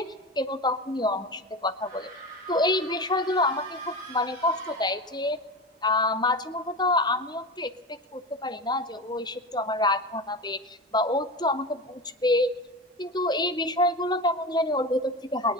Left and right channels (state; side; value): normal; both; correlation 0.25